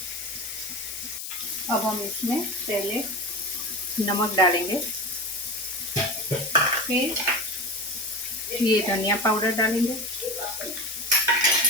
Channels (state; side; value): noise; left; hiss, 7 dB below the sound